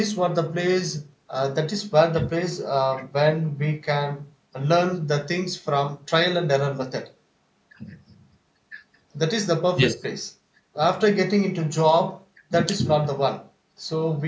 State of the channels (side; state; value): both; identical; correlation 1.00